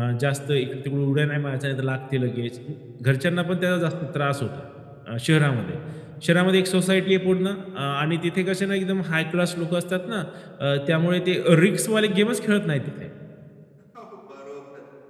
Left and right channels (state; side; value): identical; both; correlation 1.00